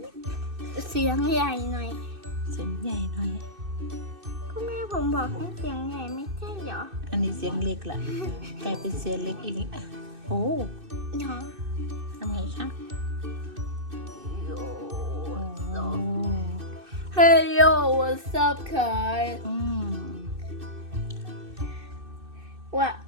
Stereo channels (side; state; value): left; late; 2.6 ms